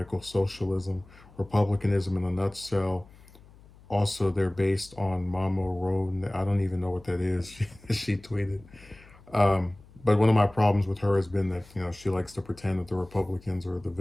socialism. Republicanism in a nutshell. Also, they're based on Mama Road. I don't even know what that is. She tweeted. But one of my problems with her has been that she likes to pretend that the Republicans are the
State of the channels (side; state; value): left; noise; hum, 24 dB below the sound